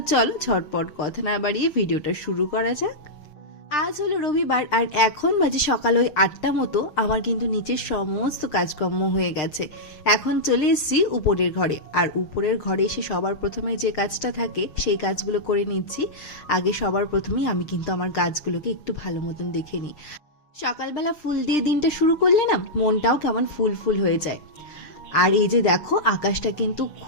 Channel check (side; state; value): right; late; 6.6 ms